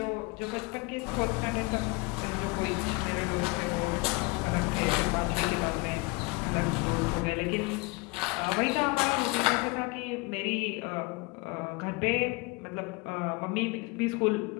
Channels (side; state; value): right; quieter; 26.0 dB